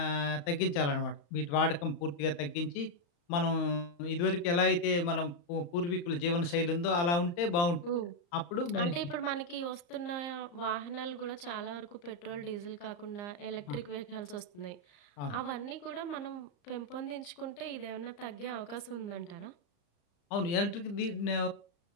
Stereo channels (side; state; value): right; late; 35 ms